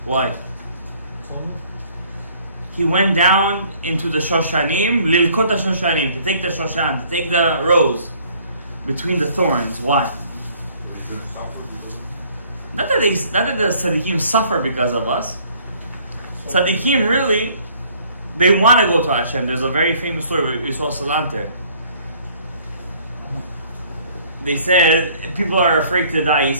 Why? He went down into the Shoshanim, Lilkot Shoshanim, to take the Shoshan, to take the rose between the thorns. Why? Not that the tzaddikim suffer because of us. Tzaddikim really, they want to go to Hashem. There's a very famous story with Yisrael Salanter. They said people are afraid to die. He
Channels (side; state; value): both; inverted; correlation -0.58